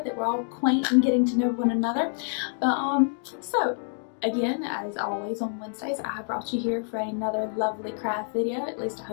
that we're all quaint and getting to know one another. So again, as always on Wednesdays, I have brought you here for another lovely craft video. At least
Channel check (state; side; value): silent; right; 60 dB below the other